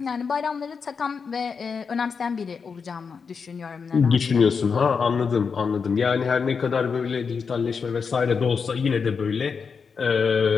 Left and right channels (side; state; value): right; quieter; 5.7 dB